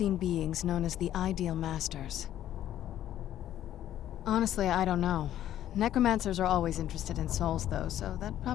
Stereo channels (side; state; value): right; quieter; 12.0 dB